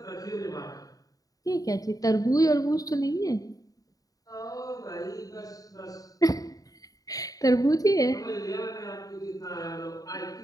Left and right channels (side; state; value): right; late; 0.18 ms